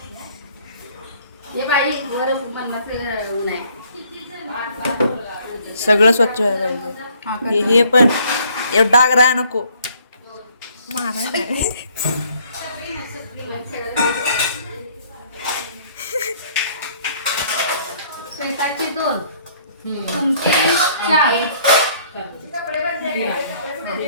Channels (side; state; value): both; inverted; correlation -0.61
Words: सगळं स्वच्छ व्हायला पाहिजे. हे पण एवढा डाग राहा नको. स्वतःची 2 तुमची 4